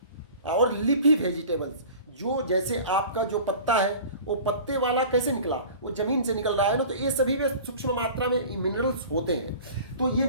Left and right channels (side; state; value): both; inverted; correlation -0.41